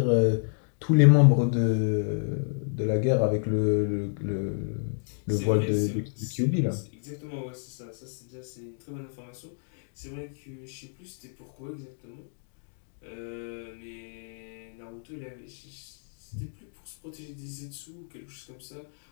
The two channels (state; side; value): silent; right; digital silence